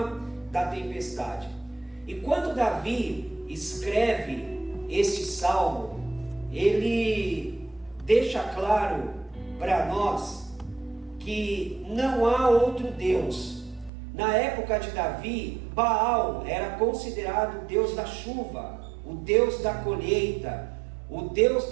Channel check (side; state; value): left; drops out; at 13.9 s